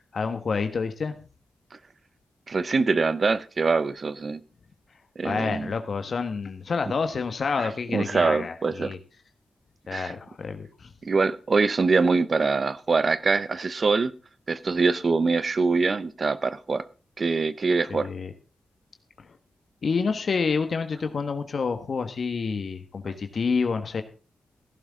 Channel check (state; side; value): normal; both; correlation 0.90